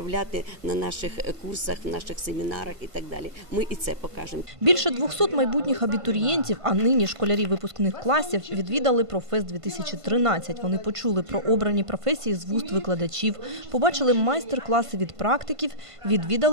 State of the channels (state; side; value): late; left; 1.5 ms